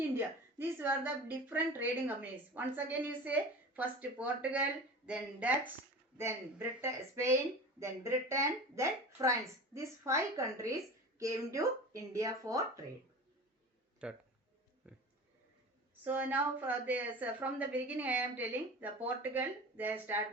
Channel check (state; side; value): normal; both; correlation 0.35